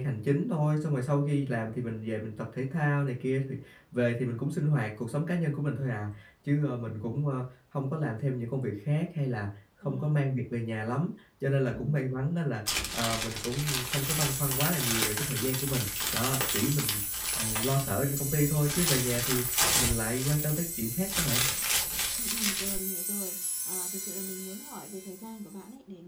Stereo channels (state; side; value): identical; both; correlation 1.00